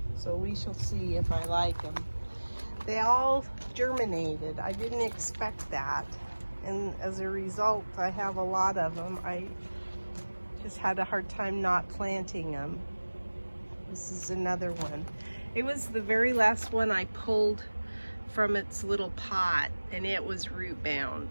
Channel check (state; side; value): inverted; both; correlation -1.00